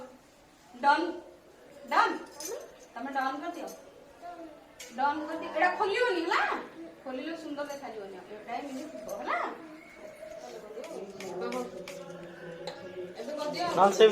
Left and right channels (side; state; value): both; identical; correlation 1.00